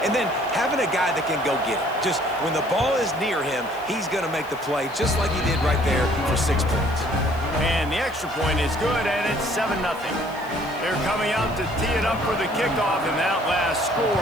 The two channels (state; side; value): noise; left; hiss, 23 dB below the sound